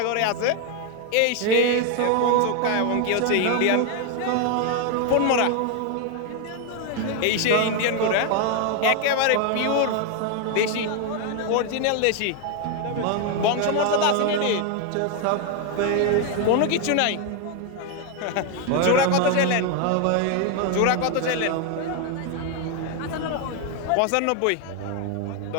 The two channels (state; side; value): different; both; correlation 0.01